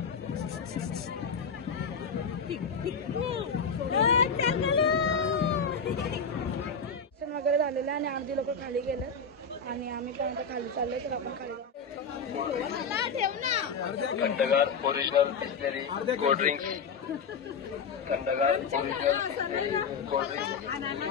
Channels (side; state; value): right; quieter; 4.9 dB